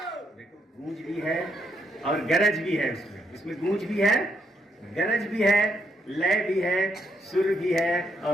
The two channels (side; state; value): both; normal; correlation 0.76